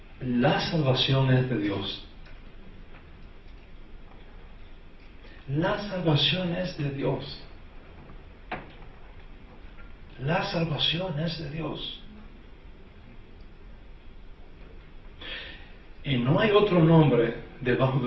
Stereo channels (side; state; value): both; identical; correlation 1.00